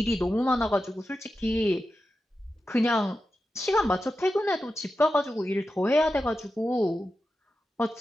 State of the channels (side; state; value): both; normal; correlation 0.91